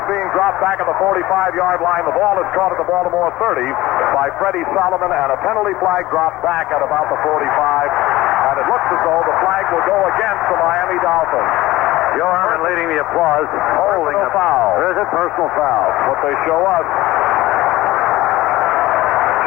being dropped back at the 45-yard line. The ball is caught at the Baltimore 30 by Freddie Solomon, and a penalty flag dropped back at about the 45, and it looks as though the flag will go against the Miami Dolphins. Joe Herman leading the applause. Holding a foul. There's a personal foul. What they show us.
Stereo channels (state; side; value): quieter; right; 17.6 dB